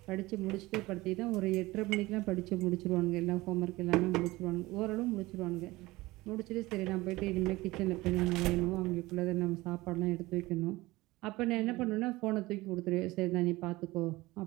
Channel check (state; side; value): quieter; left; 20.0 dB